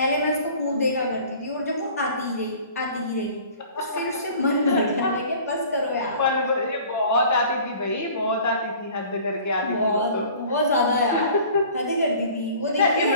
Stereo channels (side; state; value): both; inverted; correlation -0.47